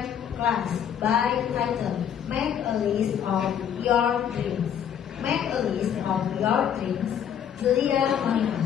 Class by title Make a List of Your Dreams. Make a list of your dreams. Julia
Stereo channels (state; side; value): quieter; right; 8.9 dB